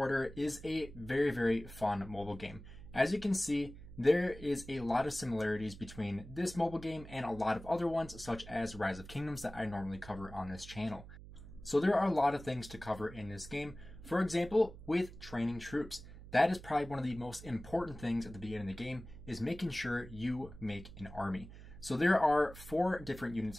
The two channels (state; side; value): noise; right; hum, 16 dB below the sound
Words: is a very, very fun mobile game. As you can see, there is a lot of similarities between this mobile game and a lot of other ones, such as Rise of Kingdoms that I normally cover on this channel. So there are a lot of things to cover in this game. For example, with training troops. That is probably one of the most important things at the beginning of the game, is making sure you make an army. So there are 4 different unit